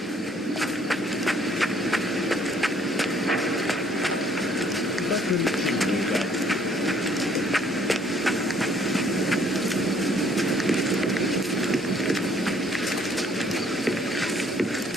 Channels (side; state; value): both; normal; correlation 0.63